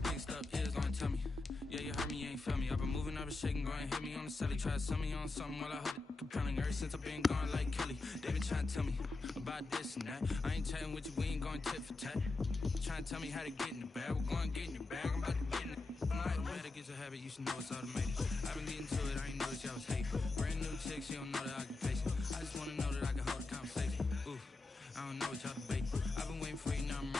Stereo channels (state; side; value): quieter; right; 3.4 dB